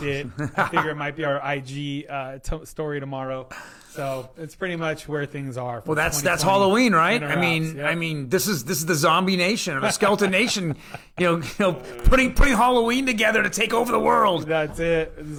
it. I figure it might be our IG story tomorrow. So it's pretty much where things are. Well, that's Halloween, right? I mean, this is the zombie nation or the skeleton nation, putting Halloween together to take over the world. That's it.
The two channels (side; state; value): both; identical; correlation 1.00